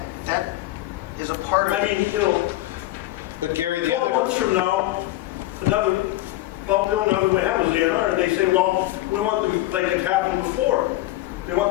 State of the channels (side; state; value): right; quieter; 16.7 dB